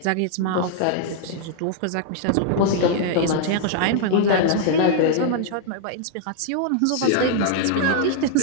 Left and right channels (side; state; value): both; different; correlation 0.00